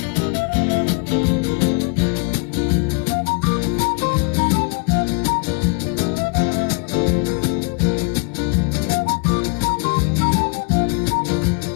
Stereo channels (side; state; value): right; quieter; 34.4 dB